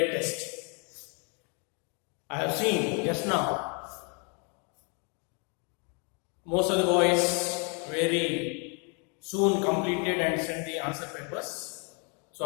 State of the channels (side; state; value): right; quieter; 35.7 dB